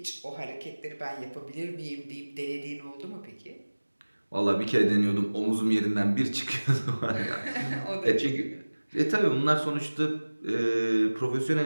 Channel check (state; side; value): inverted; both; correlation -1.00